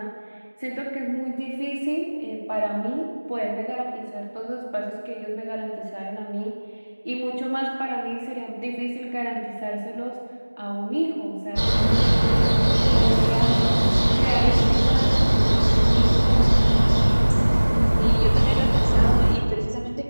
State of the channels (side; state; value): both; inverted; correlation -1.00